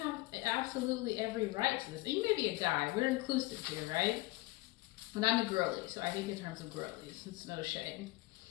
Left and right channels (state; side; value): quieter; right; 20.8 dB